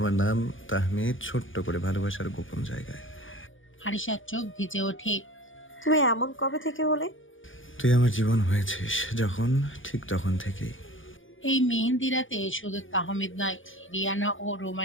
নাম তাহমিদ, ছোট্ট করে ভালোবাসার গোপন জায়গায়। আরিশার চোখ ভিজে ওঠে। তুমি এমন কবে থেকে হলে? তুই আমার জীবন হয়েছিস যখন, ঠিক তখন থেকেই। এই মেহেন্দি রাতে শুধু তাহমিদ নয়, রিয়ানা ও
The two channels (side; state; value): right; late; 0.57 ms